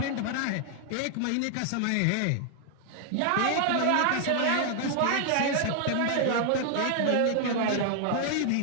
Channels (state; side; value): different; both; correlation 0.00